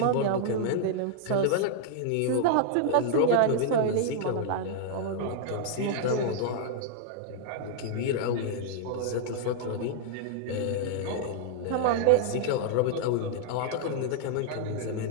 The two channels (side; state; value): both; different; correlation -0.01